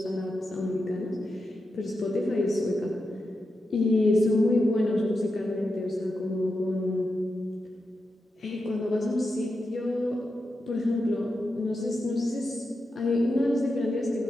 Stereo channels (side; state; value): both; normal; correlation 0.88